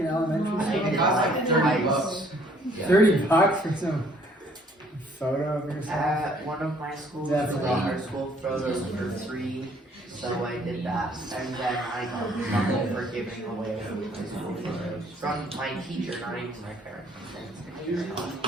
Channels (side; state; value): both; normal; correlation 0.61